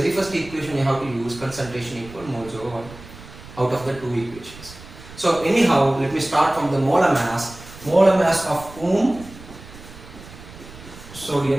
first equation you have to use? Concentration equal moles over volume out of the 2 equations. So anyhow, let me start from the molar mass. Molar mass of whom?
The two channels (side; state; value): right; noise; rumble, 17 dB below the sound